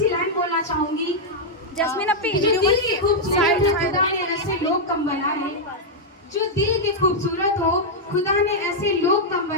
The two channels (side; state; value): both; normal; correlation -0.04